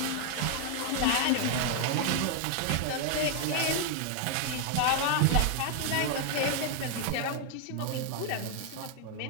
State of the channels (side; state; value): both; different; correlation 0.00